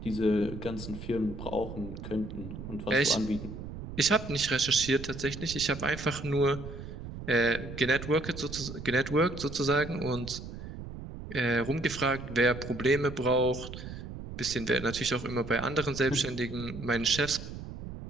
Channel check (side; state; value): right; noise; rumble, 10 dB below the sound